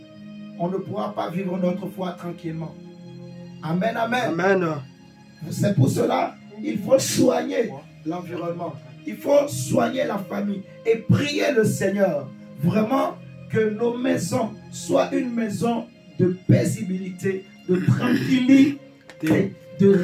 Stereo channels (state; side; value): identical; both; correlation 1.00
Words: on ne pourra pas vivre notre foi tranquillement. Amen, amen. Amen. C'est pour cela il faut soigner l'environnement. Il faut soigner la famille et prier le Seigneur. Vraiment que nos maisons soient une maison de paisibilité, de tranquillité, de